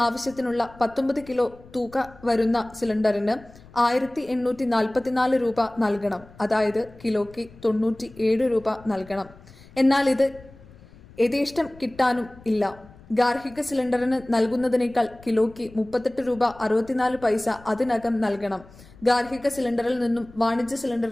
ആവശ്യത്തിനുള്ള 19 കിലോ തൂക്ക വരുന്ന സിലിണ്ടറിന് 1844 രൂപ നൽകണം. അതായത് കിലോയ്ക്ക് 97 രൂപ നൽകണം. എന്നാൽ ഇത് യഥേഷ്ടം കിട്ടാനും ഇല്ല. ഗാർഹിക സിലിണ്ടറിന് നൽകുന്നതിനേക്കാൾ കിലോയ്ക്ക് 38 രൂപ 64 പൈസ അതിനകം നൽകണം. ഗാർഹിക സിലിണ്ടറിൽ നിന്നും വാണിജ്യ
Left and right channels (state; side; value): noise; left; rumble, 22 dB below the sound